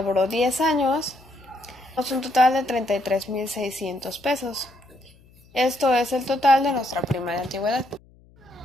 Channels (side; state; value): left; noise; hum, 28 dB below the sound